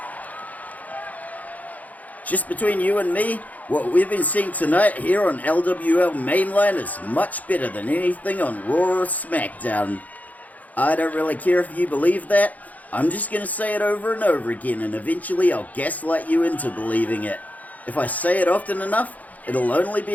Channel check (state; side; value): late; right; 0.077 ms